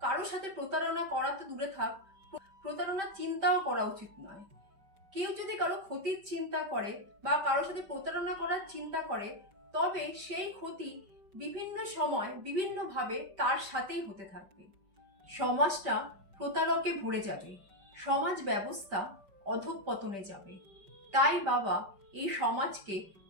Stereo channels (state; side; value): late; left; 5.1 ms